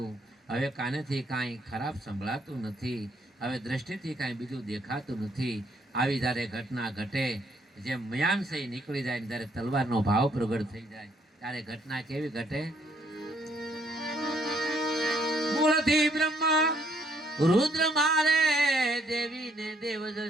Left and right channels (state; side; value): normal; both; correlation 0.68